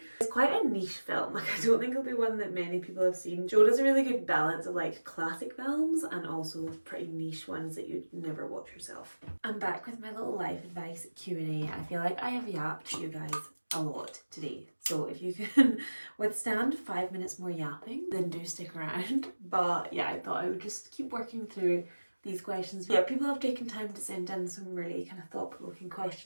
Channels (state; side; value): inverted; both; correlation -1.00